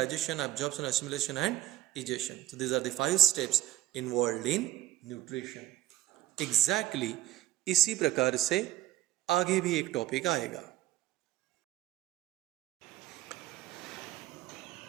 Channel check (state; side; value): quieter; left; 14.3 dB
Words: absorption, assimilation and egestion. So these are the 5 steps involved in nutrition. Exactly इसी प्रकार से आगे भी एक टॉपिक आएगा.